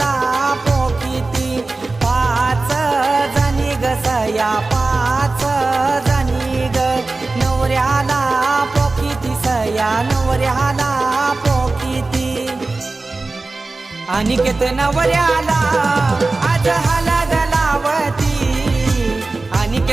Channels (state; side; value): quieter; left; 3.4 dB